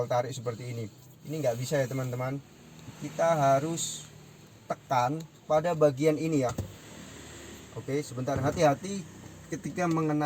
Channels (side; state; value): both; identical; correlation 1.00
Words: tarik seperti ini. Ini nggak bisa ya teman-teman. Kita harus tekan pada bagian ini ya. Oke, sebentar, hati-hati ketika